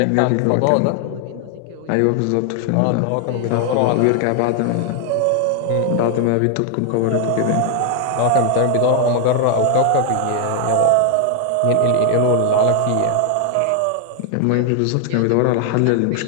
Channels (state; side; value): different; both; correlation 0.00